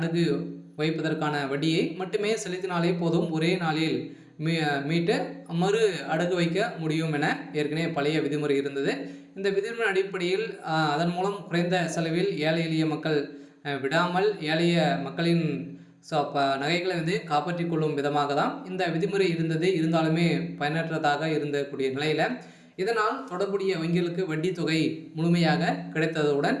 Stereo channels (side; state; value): both; identical; correlation 1.00